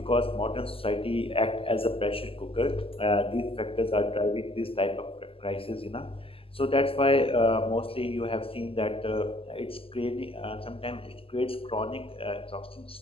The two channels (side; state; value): right; late; 0.27 ms